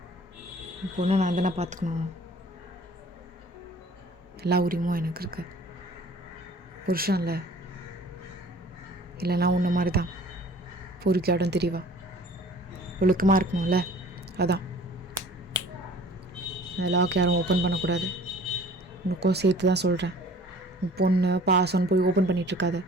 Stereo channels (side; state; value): both; normal; correlation 0.49